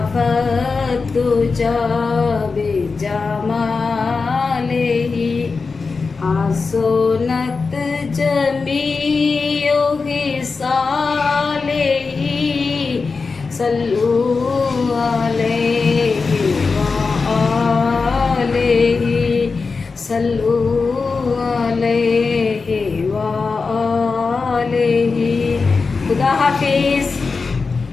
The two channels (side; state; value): right; quieter; 4.5 dB